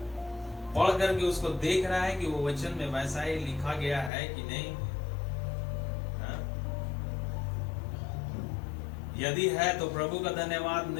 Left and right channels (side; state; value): right; drops out; at 4.1 s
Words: पढ़ करके उसको देख रहा है कि वो वचन में वैसा ही लिखा गया है कि नहीं। यदि है तो प्रभु का धन्यवाद,